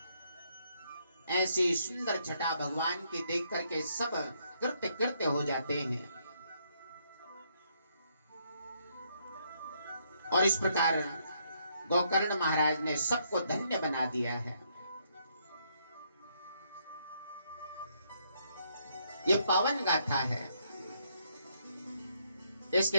ऐसी सुंदर छटा भगवान की देख करके सब कृत्य कृत्य हो जाते हैं। और इस प्रकार गोकर्ण महाराज ने सबको धन्य बना दिया है। ये पावन गाथा है,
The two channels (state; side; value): inverted; both; correlation -0.73